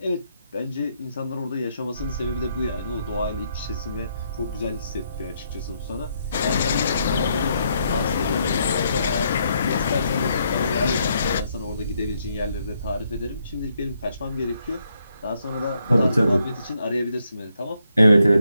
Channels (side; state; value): both; inverted; correlation -0.76